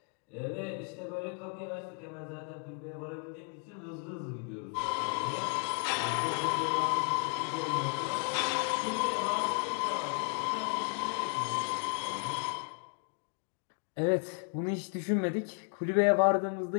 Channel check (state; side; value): quieter; right; 39.9 dB